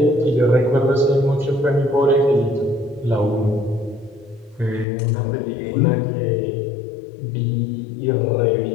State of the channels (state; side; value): drops out; right; at 4.9 s